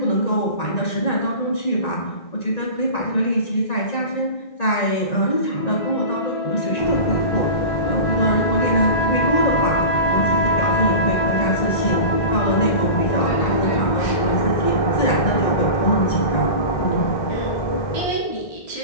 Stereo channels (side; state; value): right; late; 1.9 ms